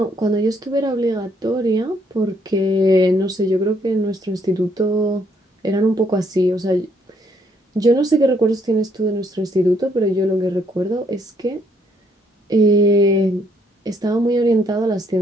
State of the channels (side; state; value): both; normal; correlation 0.69